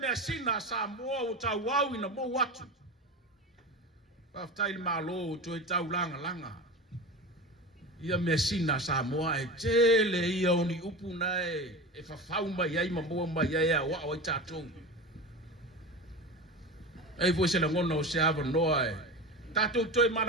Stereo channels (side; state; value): both; normal; correlation 0.27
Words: sina sa mo o tauau ina mo watu pa tai malo to e tau langa ia me sina sa mo e tele ia oni upu nai e fa fauma ia ma mo ma ia wa o tatou ai vo se la ngona o se ava noa tatou toi